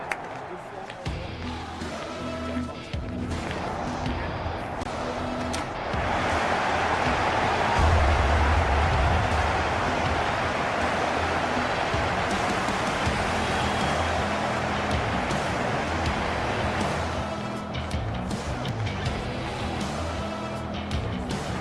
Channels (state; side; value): identical; both; correlation 1.00